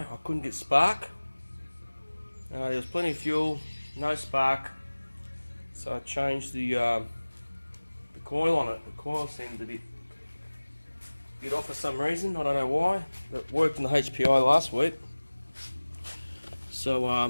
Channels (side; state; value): both; inverted; correlation -1.00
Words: couldn't get spark. There was plenty of fuel, no spark. So I changed the coil on it. The coil seemed a bit off for some reason, I don't know why. It worked in the HPI last week. So